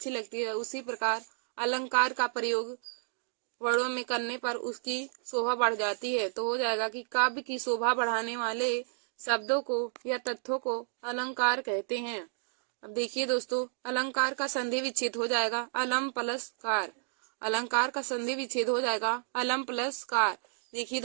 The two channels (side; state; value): left; silent; digital silence